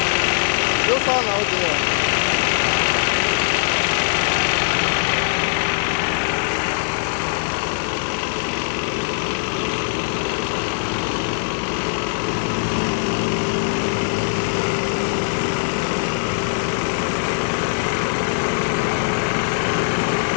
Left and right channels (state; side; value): silent; right; 65 dB below the other